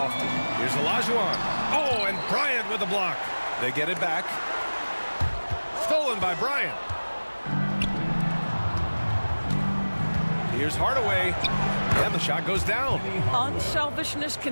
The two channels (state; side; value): inverted; both; correlation -1.00